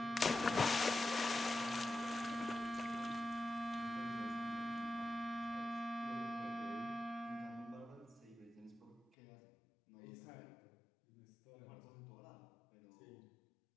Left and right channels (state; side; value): drops out; right; at 9.1 s